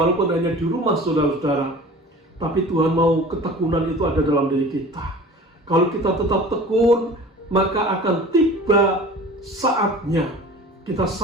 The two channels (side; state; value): both; normal; correlation 0.41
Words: hanya di rumah, saudara-saudara. Tapi Tuhan mau ketekunan itu ada dalam diri kita. Kalau kita tetap tekun, maka akan tiba saatnya kita